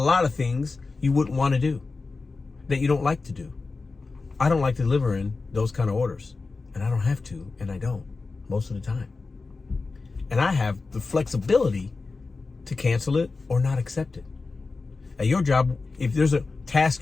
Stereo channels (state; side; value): quieter; right; 4.0 dB